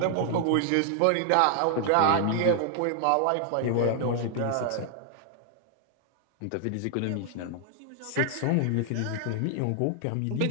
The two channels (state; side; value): different; both; correlation 0.00